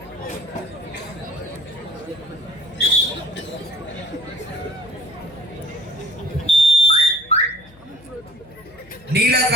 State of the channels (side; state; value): left; noise; hum, 25 dB below the sound